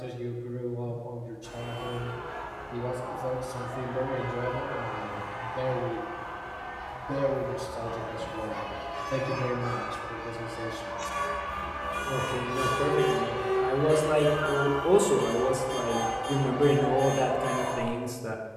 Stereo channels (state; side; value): identical; both; correlation 1.00